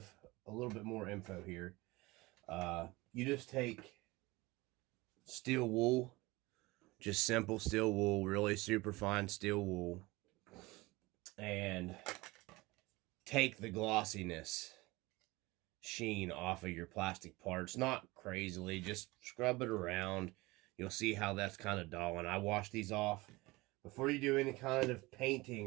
more info here. You just take steel wool, just simple steel wool, really super fine steel wool, and take the glossiness sheen off of your plastic parts. Not crazily, just scrub it around. You'll see how that's kind of dull, and I wash these off before you do any kind of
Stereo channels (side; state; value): left; quieter; 21.9 dB